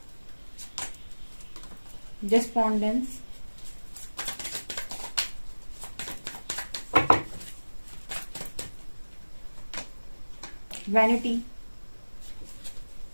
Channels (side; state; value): both; inverted; correlation -1.00